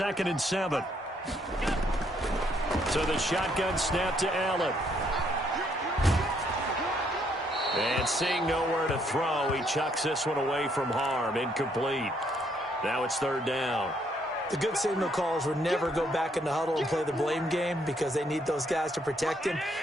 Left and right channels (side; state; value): both; normal; correlation 0.70